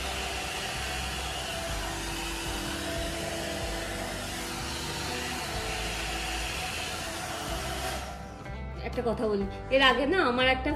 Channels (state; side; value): identical; both; correlation 1.00